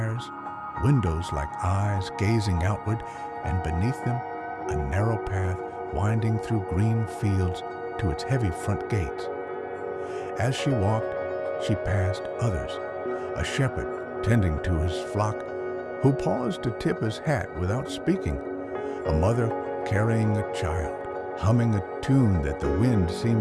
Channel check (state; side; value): identical; both; correlation 1.00